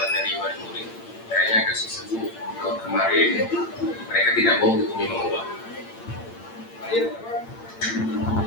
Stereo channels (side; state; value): right; late; 8.8 ms